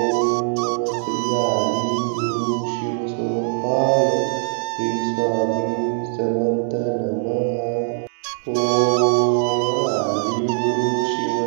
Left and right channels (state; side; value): silent; left; 65 dB below the other